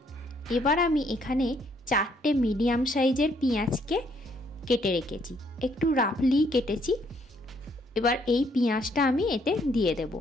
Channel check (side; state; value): both; normal; correlation 0.68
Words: এবার আমি এখানে 4টে মিডিয়াম সাইজের পেঁয়াজকে কেটে রেখেছি, একটু রাফলি কেটেছি। এবার এই পেঁয়াজটা আমি এতে দিয়ে দেব।